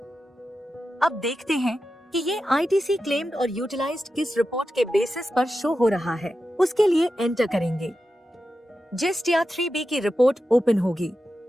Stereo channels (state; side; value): normal; both; correlation 0.91